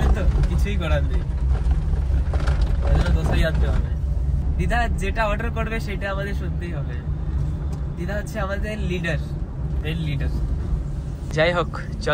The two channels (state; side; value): identical; both; correlation 1.00